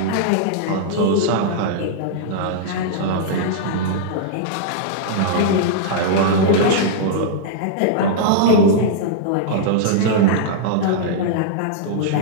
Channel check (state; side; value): different; both; correlation -0.02